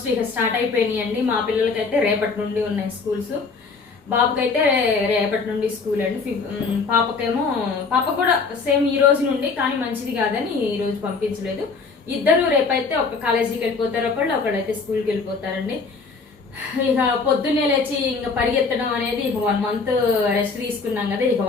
ఇక స్టార్ట్ అయిపోయినాయి అండి. మా పిల్లలకైతే రేపటి నుండి ఉన్నాయి స్కూల్స్. బాబుకైతే రేపటి నుండి స్కూల్ అండి. పాప కూడా సేమ్ ఈ రోజు నుండి, కానీ మంచిది కాదని ఈ రోజు పంపించలేదు. ఇద్దరు రేపైతే ఒక కాలేజీకి వెళ్ళిపోతారు, ఒకళ్ళైతే స్కూల్కి వెళ్ళిపోతారండి. ఇక పొద్దున్నే లేచి ఇంకా పరిగెత్తడం అనేది ఇక 1 month రెస్ట్ తీసుకున్నాం కదా, ఇక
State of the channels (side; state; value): right; quieter; 4.6 dB